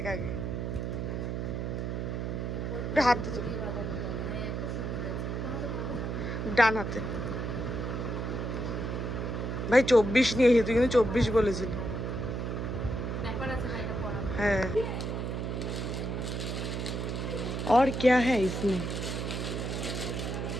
আগে। হাতে ডান হাতে। ভাই 24 নিয়েছি, তুই কিন্তু 24 বলেছিলি। হ্যাঁ। और क्या है इसमें?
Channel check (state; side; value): noise; right; hum, 2 dB below the sound